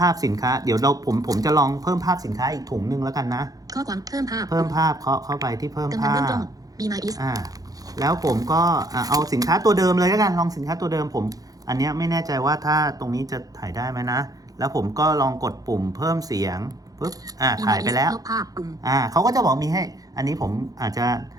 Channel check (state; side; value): late; left; 0.18 ms